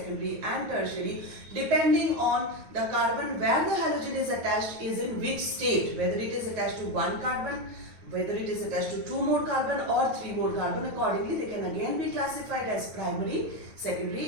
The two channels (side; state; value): left; late; 9.3 ms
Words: and tertiary depending on the carbon where the halogen is attached is in which state, whether it is attached to one carbon, whether it is attached to 2 more carbon or 3 more carbon. Accordingly, they can again be classified as primary,